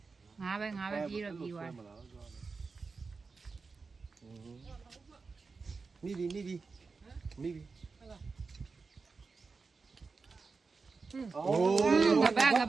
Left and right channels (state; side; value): quieter; left; 4.5 dB